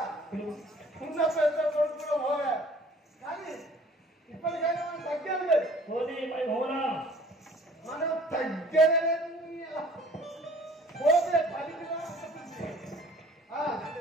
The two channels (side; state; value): both; normal; correlation 0.52